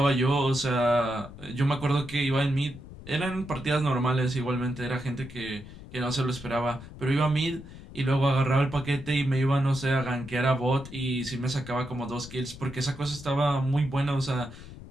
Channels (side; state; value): left; noise; rumble, 15 dB below the sound